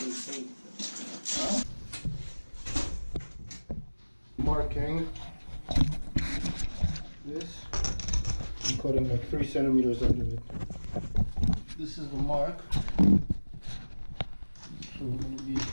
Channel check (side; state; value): both; inverted; correlation -1.00